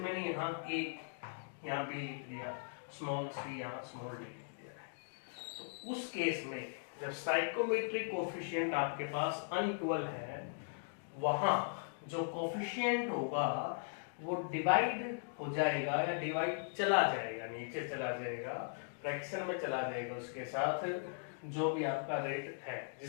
यहाँ बी लिख दिया, स्मॉल सी यहाँ स्मॉल डी लिख दिया है, तो उस केस में जब स्टाइकोमेट्रिक कोएफिशिएंट आपके पास अनइक्वल है, वहां जो कोएफिशिएंट होगा वो डिवाइड हो जाएगा या डिवाइड चला जाएगा, नीचे चला जाएगा, फ्रैक्शन में चला जाएगा उसके साथ जो भी आपका रेट है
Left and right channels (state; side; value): silent; right; digital silence